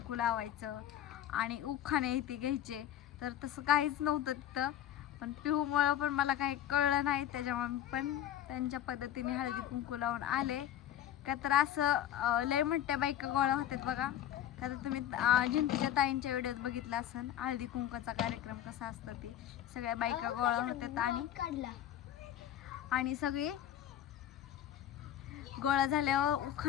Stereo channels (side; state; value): right; quieter; 11.3 dB